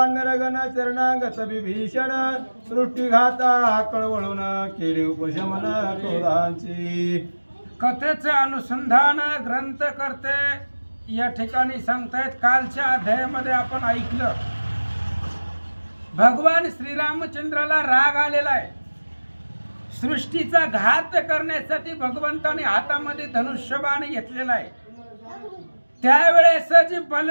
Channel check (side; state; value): both; inverted; correlation -1.00